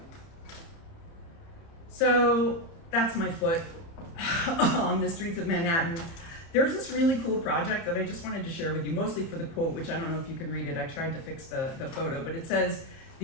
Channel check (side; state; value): right; late; 30 ms